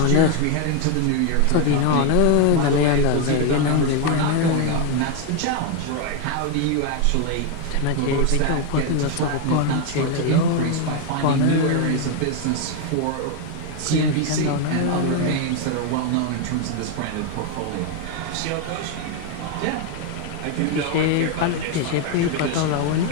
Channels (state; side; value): different; both; correlation 0.01